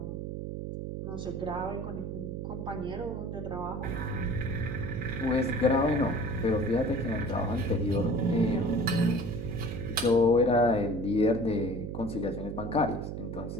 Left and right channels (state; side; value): noise; right; hum, 5 dB below the sound